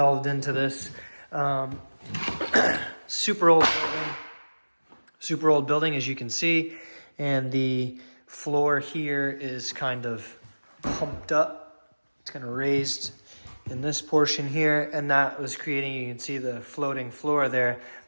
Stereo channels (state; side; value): inverted; both; correlation -1.00